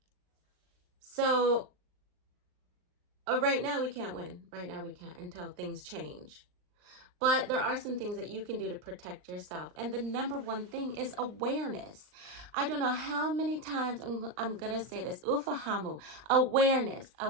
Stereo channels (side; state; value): left; late; 39 ms